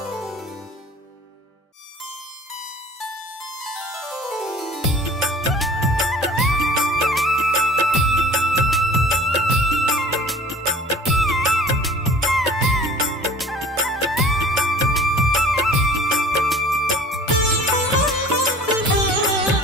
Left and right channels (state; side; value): normal; both; correlation 0.46